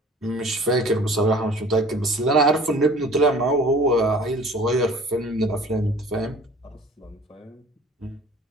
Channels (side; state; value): both; normal; correlation 0.48